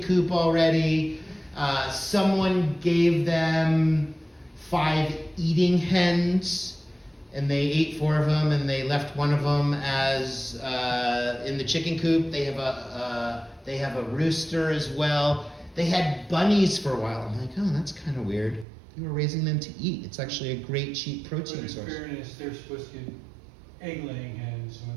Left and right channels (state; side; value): drops out; left; at 18.7 s